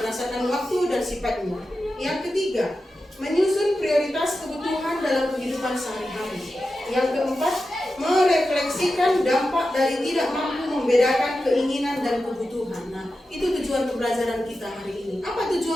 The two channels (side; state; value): both; normal; correlation 0.91